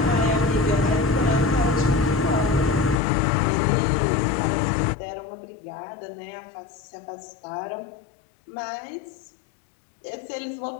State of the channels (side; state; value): right; drops out; at 3.0 s